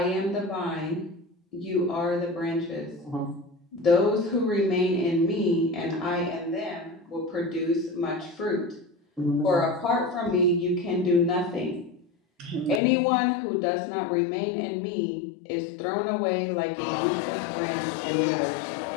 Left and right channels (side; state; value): right; drops out; at 12.8 s